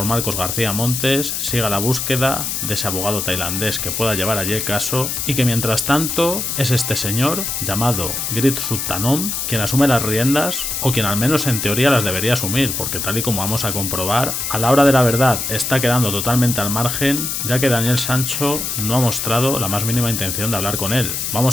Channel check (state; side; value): noise; left; hiss, 2 dB below the sound